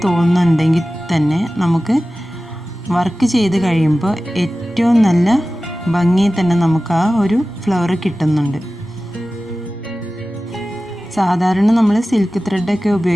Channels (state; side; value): normal; both; correlation 0.96